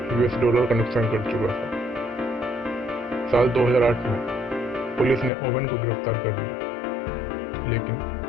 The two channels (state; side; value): drops out; right; at 5.3 s